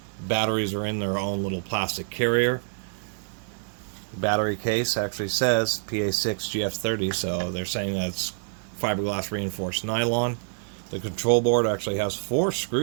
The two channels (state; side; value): silent; left; 60 dB below the other